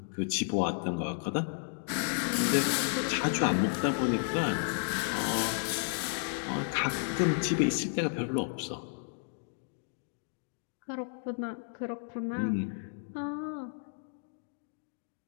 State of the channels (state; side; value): silent; right; digital silence